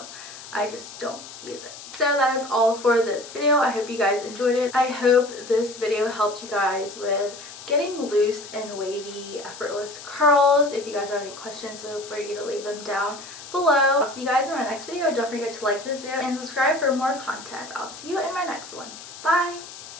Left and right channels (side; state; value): left; noise; hiss, 15 dB below the sound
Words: I just don't use it. So that is all for this video. I hope you guys enjoyed it. I hope this video helped you guys with getting loose and wavy, effortless curls. If you guys have any questions, feel free to leave them down below. I'll see you guys in my next video. Don't forget to like this video and subscribe for more content. I'll see you in my next one. Bye!